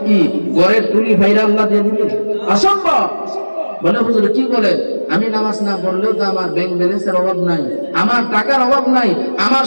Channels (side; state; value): both; inverted; correlation -1.00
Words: কি ঘরের টুলি ভাইরা আল্লাহ দিয়ে দিবেন? অসম্ভব। বলে হুজুর কি বলেন, আমি নামাজ না পড়লেও তো আমার ব্যাংক ব্যালেন্সের অভাব নাই, আমার টাকার অভাব নাই, আমার